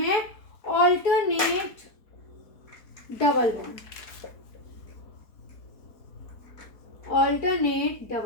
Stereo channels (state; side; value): late; right; 4.1 ms